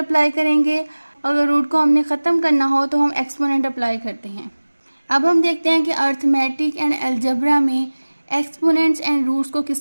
करेंगे। अगर रूट को हमने ख़त्म करना हो तो हम एक्सपोनेंट अप्लाई करते हैं। अब हम देखते हैं कि अर्थमेटिक एंड अलजेब्रा में एक्सपोनेंट्स एंड रूट्स को किस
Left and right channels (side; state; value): both; inverted; correlation -1.00